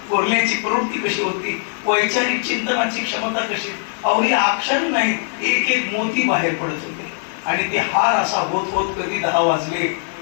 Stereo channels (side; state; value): right; silent; 56 dB below the other